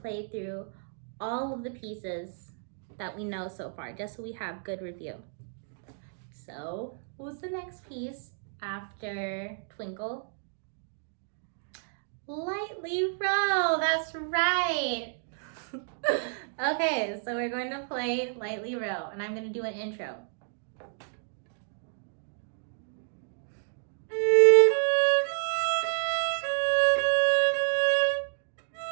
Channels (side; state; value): left; silent; digital silence